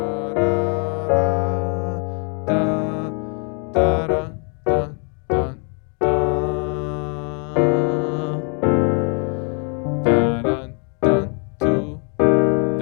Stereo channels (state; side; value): quieter; right; 39.6 dB